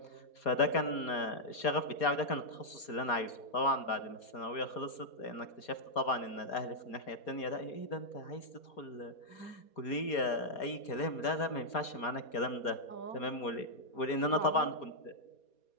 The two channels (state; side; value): late; right; 4.2 ms